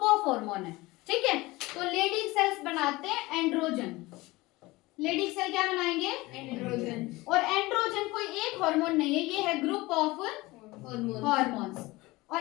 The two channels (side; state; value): right; quieter; 20.9 dB